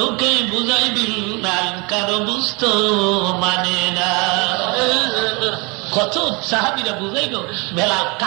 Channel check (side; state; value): left; quieter; 29.0 dB